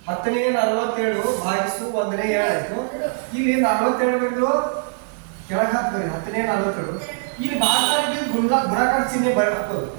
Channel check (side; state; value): left; silent; 64 dB below the other